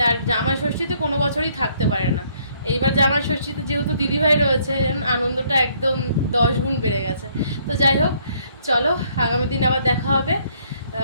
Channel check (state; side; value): inverted; both; correlation -0.66